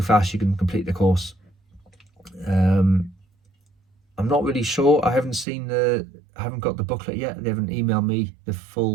you can complete the course. I'm not really sure. I haven't got the booklet yet. They haven't emailed me the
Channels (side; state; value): left; drops out; at 5.5 s